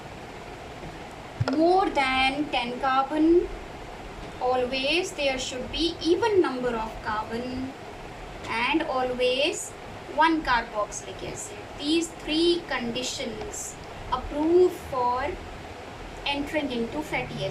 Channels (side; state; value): both; identical; correlation 1.00